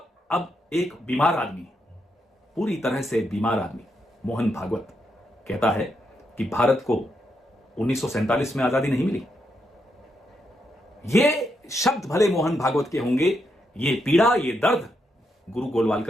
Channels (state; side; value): normal; both; correlation 0.81